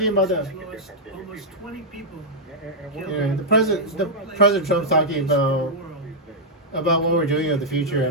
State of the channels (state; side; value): normal; both; correlation -0.06